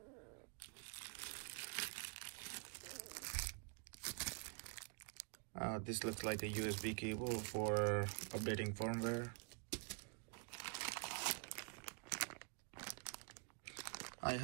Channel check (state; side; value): quieter; left; 34.0 dB